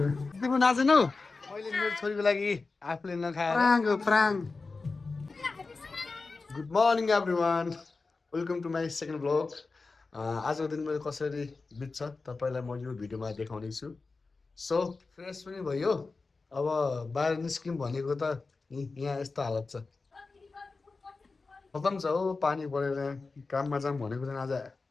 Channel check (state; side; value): quieter; right; 4.0 dB